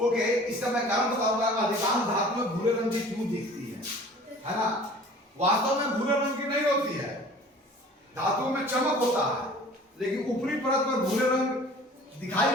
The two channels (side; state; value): both; normal; correlation 0.47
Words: इसका मैं कारण बताऊंगा। अधिकांश धातुएं भूरे रंग की क्यों दिखती है ना। वास्तव में भूरे रंग की नहीं होती है, धातुओं में चमक होता है, लेकिन ऊपरी परत पर भूरे रंग दिखाई